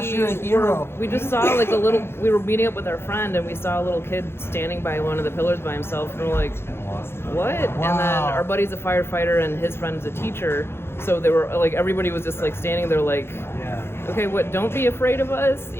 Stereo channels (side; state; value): right; late; 0.12 ms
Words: you're a hero. We just saw like we were meeting up with our friend, and we saw a little kid standing by one of the pillars by himself, and we're like, what? Wow. And then our buddy's a firefighter and his friend's a teacher, so they were like, everybody was just like standing there like, okay, what, don't be afraid of us,